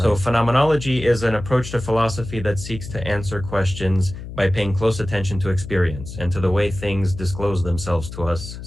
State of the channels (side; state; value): left; noise; hum, 11 dB below the sound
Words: Right. phenomenology is an approach to philosophy that seeks to answer questions by paying close attention to experience and to the way things disclose themselves to us,